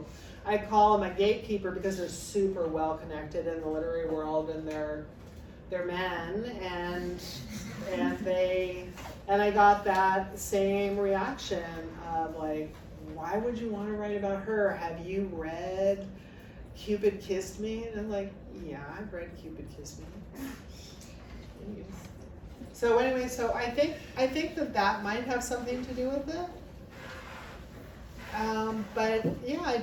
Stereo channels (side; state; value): both; identical; correlation 1.00